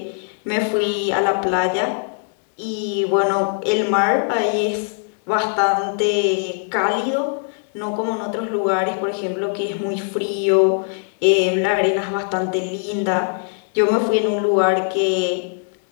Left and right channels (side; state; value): right; silent; 59 dB below the other